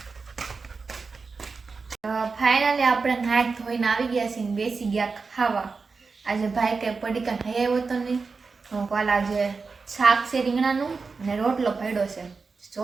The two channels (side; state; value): left; quieter; 4.5 dB